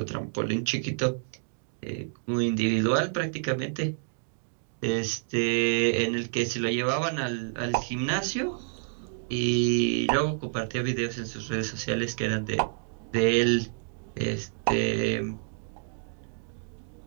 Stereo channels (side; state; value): left; silent; digital silence